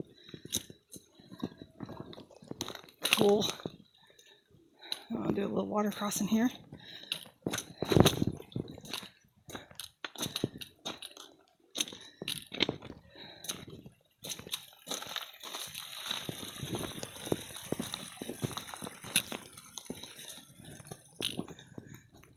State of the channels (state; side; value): identical; both; correlation 1.00